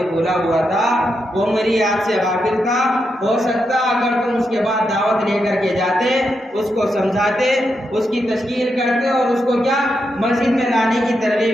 بھولا ہوا تھا، وہ میری یاد سے غافل تھا، ہو سکتا اگر تم اس کے بعد دعوت لے کر کے جاتے، اس کو سمجھاتے، اس کی تشکیل کرتے اور اس کو کیا مسجد میں لانے کی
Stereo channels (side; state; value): both; normal; correlation 0.84